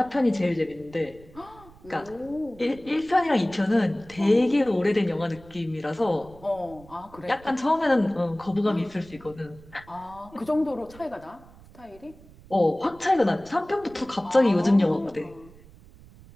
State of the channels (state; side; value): noise; right; rumble, 22 dB below the sound